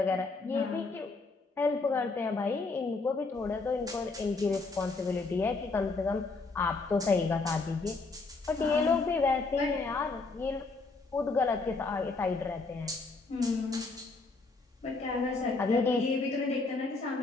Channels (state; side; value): quieter; right; 3.8 dB